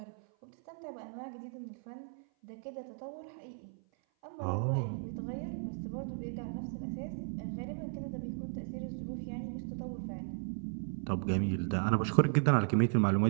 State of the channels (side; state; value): left; silent; 54 dB below the other